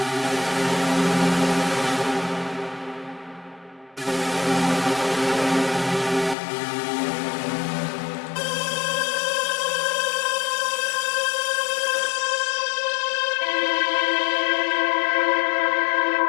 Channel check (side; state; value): right; drops out; at 6.4 s